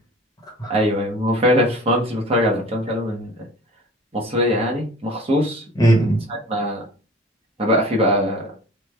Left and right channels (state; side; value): normal; both; correlation 0.42